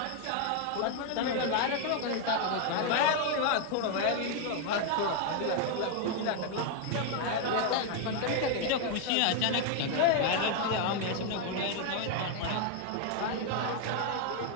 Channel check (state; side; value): different; both; correlation 0.01